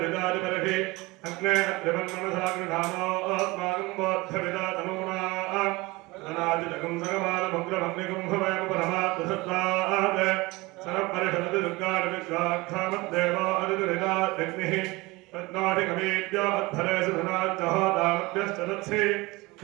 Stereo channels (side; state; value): left; quieter; 22.7 dB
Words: अग्ने अत्रिवन्मनसाग्निधानो अस्माकं बोद्धविदातनूना अनादिजगं सगमालमुग्रमग्निगं भवयमुपरमात्मसत्त्वात् सरपरिषदति दुर्गाणि विश्वाक्षामद्देवो अदिदुरिदात्यग्निः रत्नाटिकमेद्यो अध्वरेषु धनाच्चहोदामभ्यश्च तत्सि